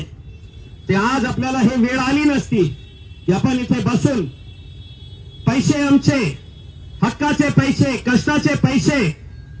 ते आज आपल्याला हे वेळ आली नसती की आपण इथे बसून पैसे आमचे, हक्काचे पैसे, कष्टाचे पैसे,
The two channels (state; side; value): identical; both; correlation 1.00